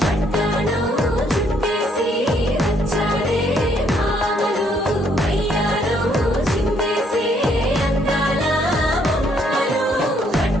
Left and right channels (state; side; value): normal; both; correlation 0.69